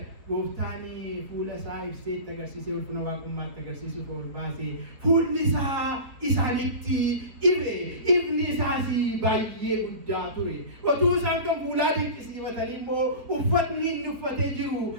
Gooftaan fuula isaa ibsee itti agarsiisee ulfina waaqummaatti agarsiisuuf ol baasee fuulli isaa isaanitti ife. Ifni isaas baay'ee guddaa ture. Otuu isaan kan fuulaa dinqisiifatanii immoo uffatni inni uffatee jiru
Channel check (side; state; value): left; late; 4.2 ms